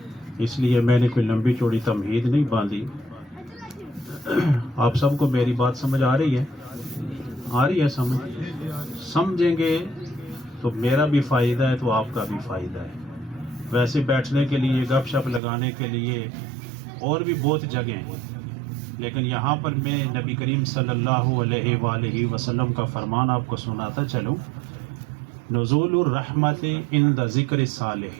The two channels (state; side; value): drops out; left; at 15.4 s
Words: اس لیے میں نے کوئی لمبی چوڑی تمہید نہیں باندھی۔ آپ سب کو میری بات سمجھ آ رہی ہے سمجھیں گے تو میرا بھی فائدہ ہے تو آپ کا بھی فائدہ ہے۔ ویسے بیٹھنے کے لیے، گپ شپ لگانے کے لیے اور بھی بہت جگہیں ہیں، لیکن یہاں پر میں نبی کریم صلی اللہ علیہ وآلہ وسلم کا فرمان آپ کو سناتا چلوں۔ نزول الرحمت عند ذکر